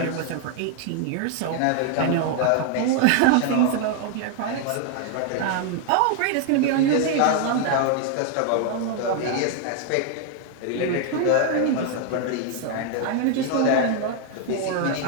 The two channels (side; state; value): both; different; correlation 0.00